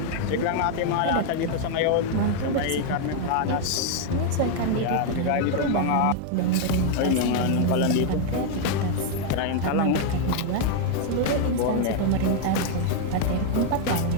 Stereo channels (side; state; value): both; different; correlation 0.01